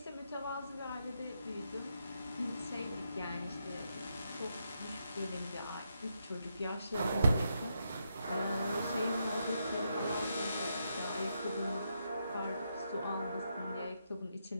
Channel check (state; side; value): inverted; both; correlation -0.81